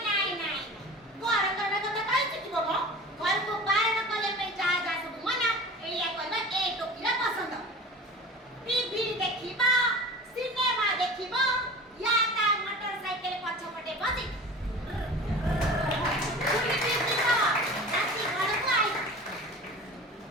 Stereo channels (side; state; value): both; normal; correlation 0.37